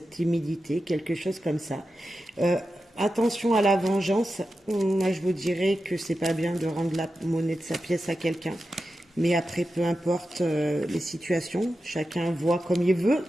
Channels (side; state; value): both; normal; correlation 0.91